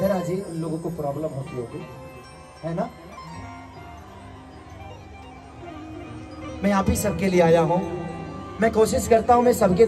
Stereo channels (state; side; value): identical; both; correlation 1.00